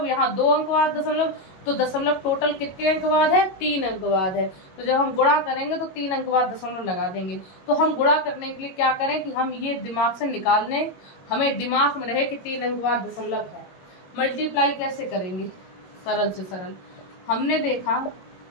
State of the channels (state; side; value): late; right; 22 ms